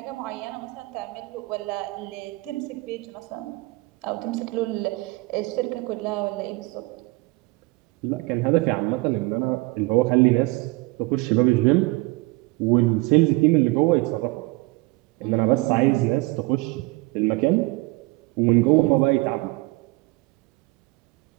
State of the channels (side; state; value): left; quieter; 23.6 dB